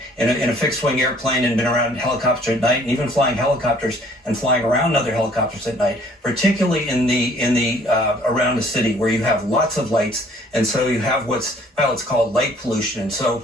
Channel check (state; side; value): normal; both; correlation 0.58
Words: in a fixed-wing airplane and been around helicopters at night, and even flying helicopters and flying around other helicopters at night, particularly in the around the city where you have lots of lights, and so you have what's pilots call light pollution. And so